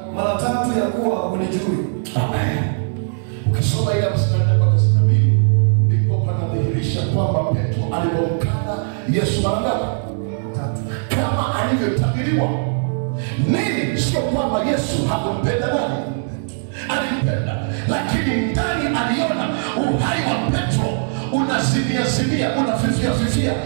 mara 3 ya kuwa hunijui. Amen. Ukisoma ile mstari mpaka 62, ndipo panadhihirisha kwamba Petro alipomkana Yesu mara ngapi? 3. Kama alivyotabiriwa. Nini? Sio kwamba Yesu hakumpenda nani? Alimpenda, lakini ndani aliona uhai wa Petro unazimia, unafifia.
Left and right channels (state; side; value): silent; left; digital silence